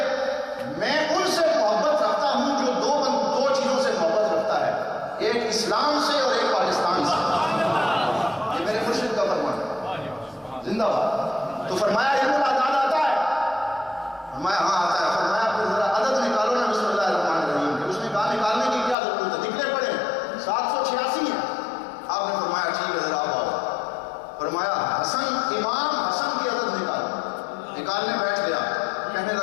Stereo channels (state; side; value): drops out; right; at 18.9 s